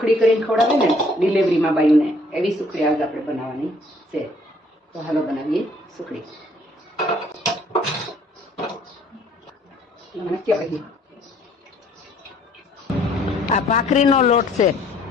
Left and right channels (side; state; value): both; normal; correlation 0.61